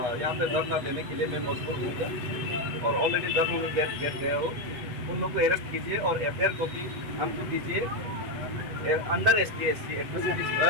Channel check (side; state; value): left; late; 8.0 ms